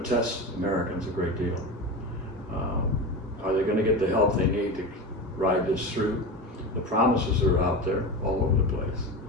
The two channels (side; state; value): both; normal; correlation 0.25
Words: test Americans a great deal. Are they going to get the help they need to ride this through? The promises are out there all over the place.